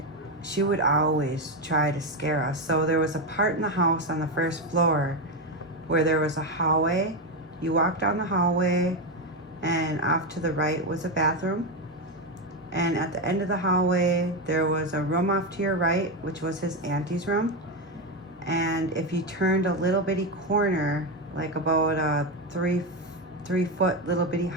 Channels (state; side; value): normal; both; correlation 0.11